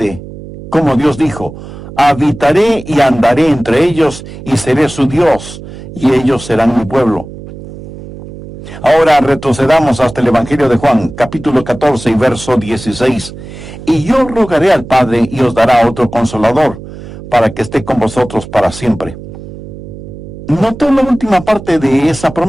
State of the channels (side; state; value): right; noise; hum, 14 dB below the sound